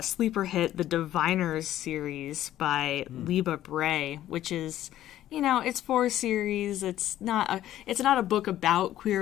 Sleeper Hit, the Diviners series by Libba Bray, which is, it's 4 series. It's not a book about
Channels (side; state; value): right; quieter; 12.9 dB